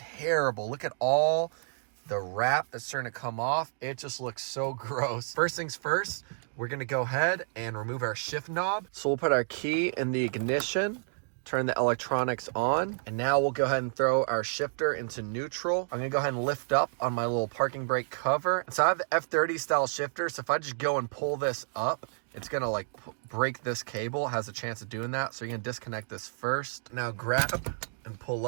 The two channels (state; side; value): silent; left; digital silence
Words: Look at all the wrap that's starting to come off. It just looks so gross. First things first, we're gonna go ahead and remove our shift knob. So we'll put our key in the ignition, turn the electronics on, and now we'll go ahead and throw our shifter into neutral. I'm gonna go ahead and lift up on my little parking brake cover. So I have the F30 style shifter, so if I just go and pull this up, it's gonna like break this cable, has a chance of doing that. So you're gonna disconnect this first. Now grab and pull